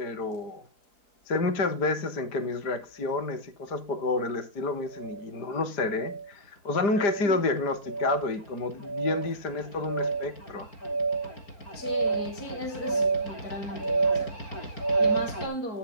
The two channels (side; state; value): right; late; 4.6 ms